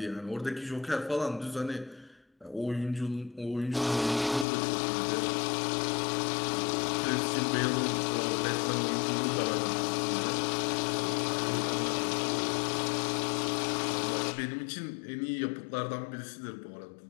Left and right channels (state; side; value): drops out; right; at 4.5 s